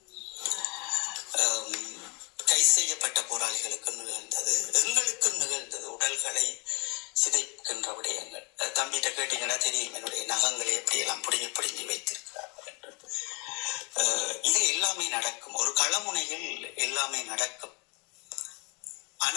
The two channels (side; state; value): right; quieter; 30.7 dB